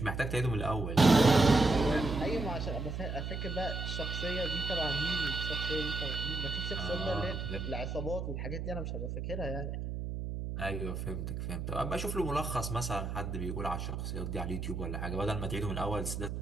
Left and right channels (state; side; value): noise; right; hum, 4 dB below the sound